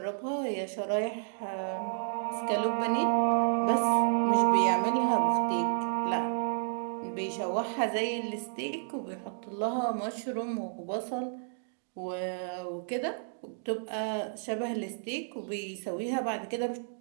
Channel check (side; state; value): left; silent; digital silence